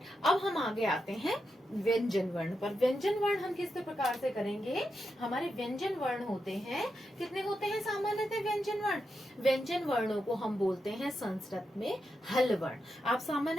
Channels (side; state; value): both; normal; correlation 0.86